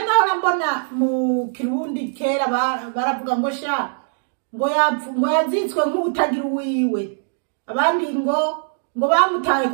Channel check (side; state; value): left; silent; 65 dB below the other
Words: mbona mu Kirundi kera baravuga ngo sha ngo yazitswe nk'utagira uwiwe, abandi ngo bamutaye